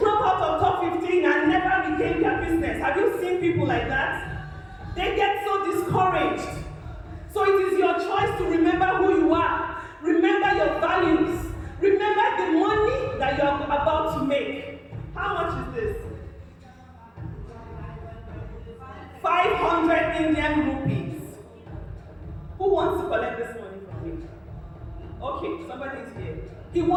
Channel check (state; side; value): identical; both; correlation 1.00